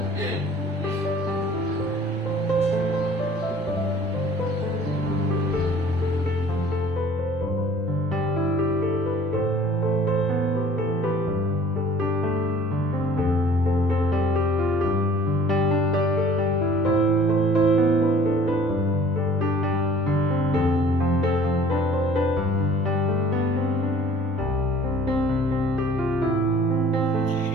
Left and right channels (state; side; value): normal; both; correlation 0.51